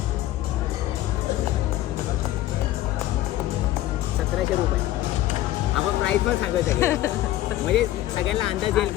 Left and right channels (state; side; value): quieter; right; 14.7 dB